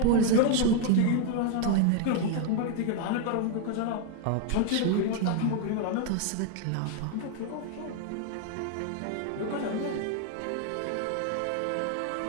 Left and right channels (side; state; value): both; different; correlation 0.00